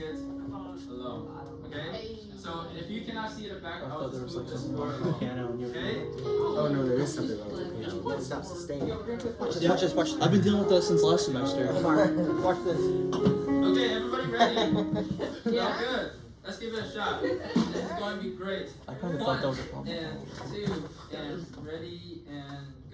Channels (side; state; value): both; identical; correlation 1.00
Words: it along. Okay? So if you cannot see the back, I'll just move this forward along. Okay? Oh no, there is something wrong with the piano. It's not sustained. Watch. I've been dealing with this since last semester. Watch this. Okay, everybody ready? Yeah. Good. Let's give it a shot. This is going to be great. I kind of thought that was a problem. 1 and 2 and ready and